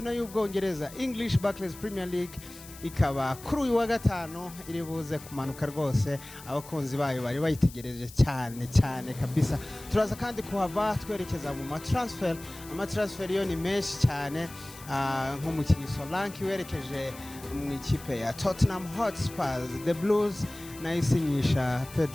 y'Ubwongereza English Barclays Premier League ikaba kuri uyu wa gatanu iri buze kumanuka rwose, abakunzi bayo bari bayitegereje cyane kabisa. Turaza kandi kuhava twerekeza mu amatransfer yo ni menshi cyane, nk'umukinnyi Solanke werekeje mu ikipe ya Tottenham Hotspur, The Blues nayisinyisha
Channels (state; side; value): noise; left; hiss, 17 dB below the sound